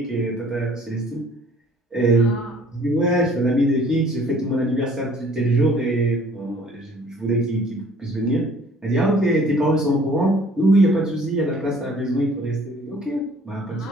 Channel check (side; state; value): both; normal; correlation 0.55